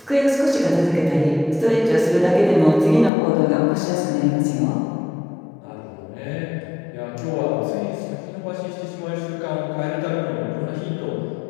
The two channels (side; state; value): right; drops out; at 3.1 s